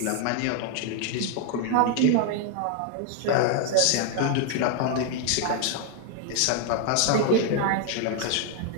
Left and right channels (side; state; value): both; different; correlation 0.00